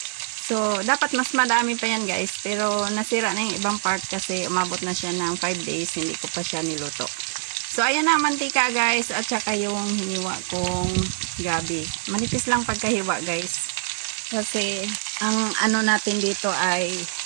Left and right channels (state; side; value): silent; left; 58 dB below the other